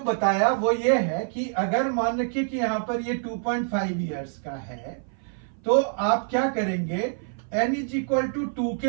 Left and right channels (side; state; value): left; silent; 57 dB below the other